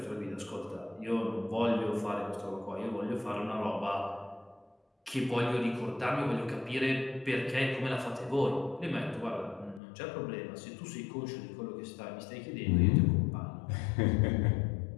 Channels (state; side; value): drops out; right; at 9.8 s